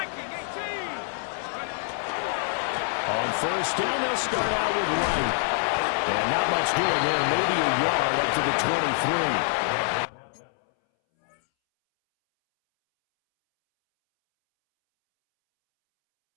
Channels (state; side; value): silent; right; 61 dB below the other